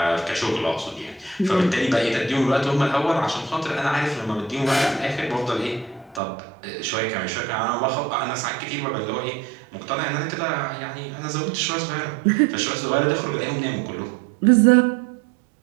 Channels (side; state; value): left; drops out; at 6.2 s